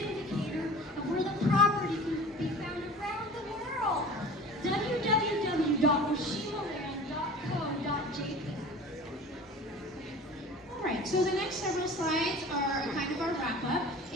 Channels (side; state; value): both; normal; correlation 0.40